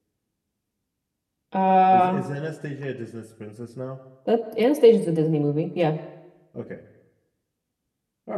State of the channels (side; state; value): both; identical; correlation 1.00